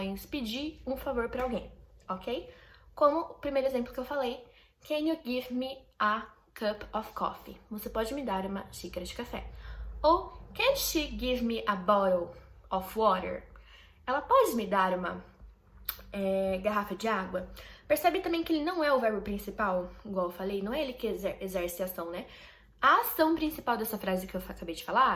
pedir um favor pra alguém, ok? Como o primeiro exemplo que eu falei, Can you give me a cup of coffee? Você pode me dar uma xícara de café. Ou, Can she give me a bottle of water? Ela pode me dar uma garrafa de água? Percebe também que ele não é o verbo principal, igual eu falei, não é ele que exerce a ação, né? A ação principal dessa frase que eu acabei de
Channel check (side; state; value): both; identical; correlation 1.00